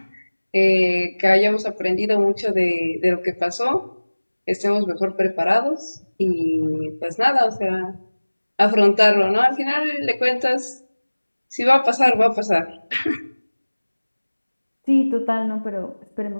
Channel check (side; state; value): both; inverted; correlation -1.00